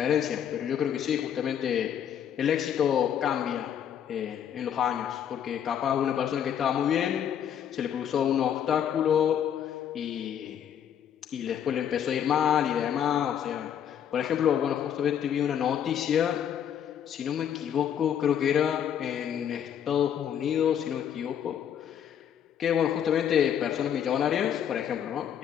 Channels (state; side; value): quieter; right; 9.2 dB